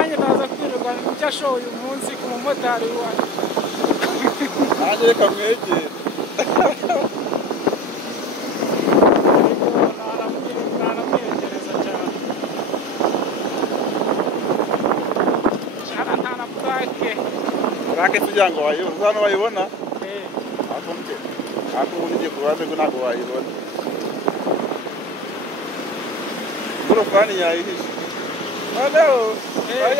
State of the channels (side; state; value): both; normal; correlation 0.34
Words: ndaza kwirirwa icyo ashoboye uyu munsi ku mumotari wacu nanjye reka mwegere naramwegereza cyane nta na purake kugira ngo wayibona hano wayibona ako ubundi ugiye ku ruhande ngo ntabwo wayibona ingorofani yayihishe noneho bari